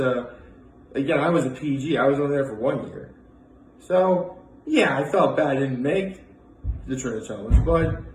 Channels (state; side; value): identical; both; correlation 1.00